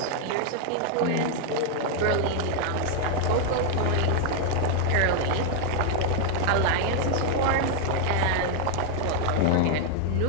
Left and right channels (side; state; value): both; different; correlation 0.00